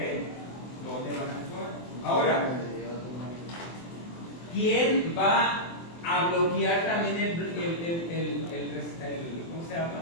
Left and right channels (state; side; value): late; right; 24 ms